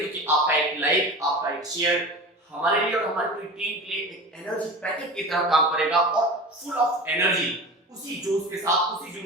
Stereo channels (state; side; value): normal; both; correlation 0.32